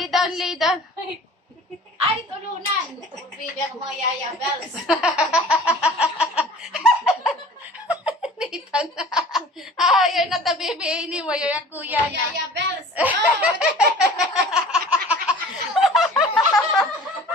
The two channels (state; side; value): normal; both; correlation 0.45